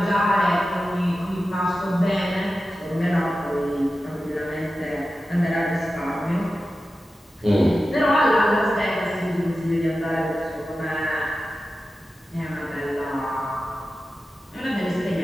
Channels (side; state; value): both; normal; correlation 0.93